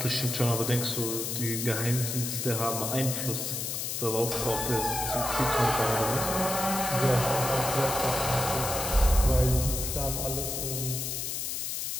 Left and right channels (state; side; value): noise; left; hiss, 3 dB below the sound